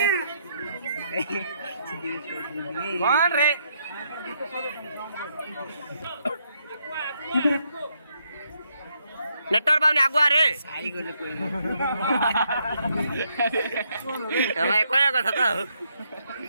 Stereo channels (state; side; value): inverted; both; correlation -0.75